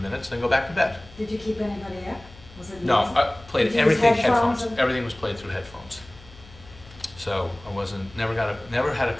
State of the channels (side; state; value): left; noise; hum, 21 dB below the sound